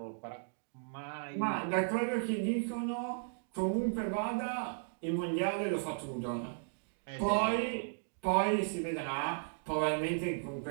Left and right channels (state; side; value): silent; left; digital silence